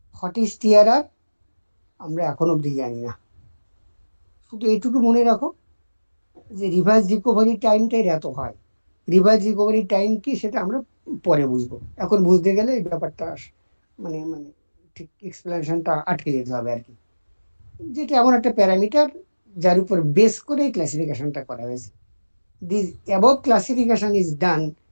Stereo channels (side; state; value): both; inverted; correlation -1.00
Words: What is TRR? আমরা এখন অব্দি জানি না, শুধু এইটুকু মনে রাখো যে রিভার্স রিকভারি টাইমটাই এত হয়। রিভার্স রিকভারি টাইম কি সেটা আমরা পরে বুঝবো, এখন বুঝতে গেলে এই ব্যাপারটা মানে মানে ঠিক এক্সপ্লেনেশনটা আটকে যেতে হবে আর কি, যেটা এমন একটা প্যারামিটার যার উপর বেস করে ক্লাসিফিকেশনটা করা হয়েছে। This above classification is done